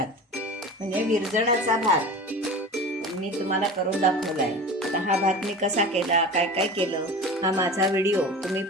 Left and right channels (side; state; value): both; normal; correlation 0.33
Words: म्हणजे विरजणाचा भात मी तुम्हाला करून दाखवलाय. आता हा भात मी कसा केला, काय काय केलं, हा माझा व्हिडिओ तुम्ही